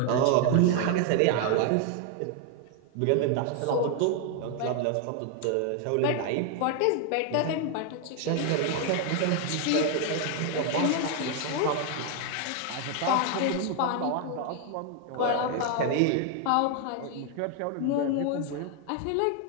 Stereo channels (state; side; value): different; both; correlation 0.01